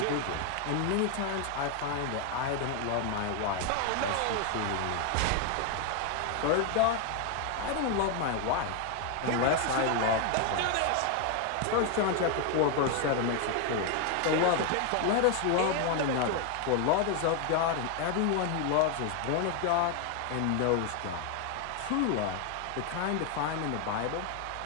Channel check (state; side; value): different; both; correlation 0.01